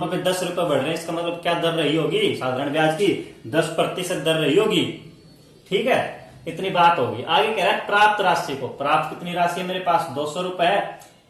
पे 10 रुपए बढ़ रहे हैं, इसका मतलब क्या दर रही होगी? साधारण ब्याज की 10% दर रही होगी। ठीक है, इतनी बात होगी। आगे कह रहा है प्राप्त राशि को, प्राप्त कितनी राशि है मेरे पास? 200 रुपए है।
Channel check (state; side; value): identical; both; correlation 1.00